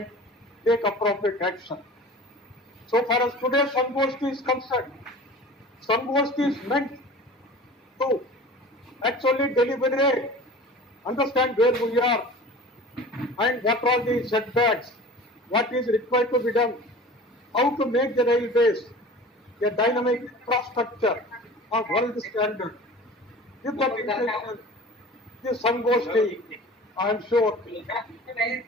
take appropriate action. So far as today's Sangosti is concerned, Sangosti is meant to actually deliberate, understand where we are and what are the setbacks, what is required to be done, how to make the railways a dynamic infrastructure of world standard. With that intention, this Sangosti, I am sure,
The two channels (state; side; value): normal; both; correlation 0.40